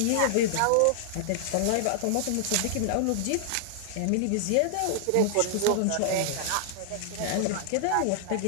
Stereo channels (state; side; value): different; both; correlation -0.01